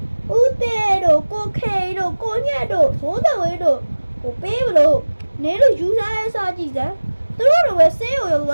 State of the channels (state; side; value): inverted; both; correlation -1.00